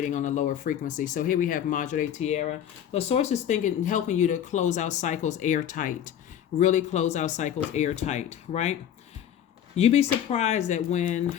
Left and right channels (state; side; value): quieter; right; 9.8 dB